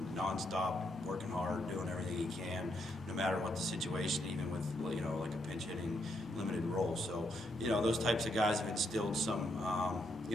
nonstop, working hard, doing everything he can, no matter what the situation, even with like a pinch hitting limited role. So those types of guys have instilled some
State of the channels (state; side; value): normal; both; correlation 0.77